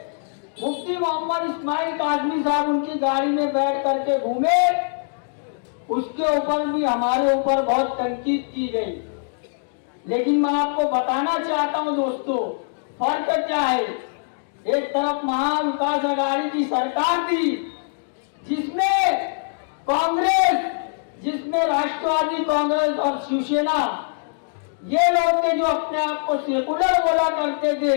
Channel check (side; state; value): right; silent; digital silence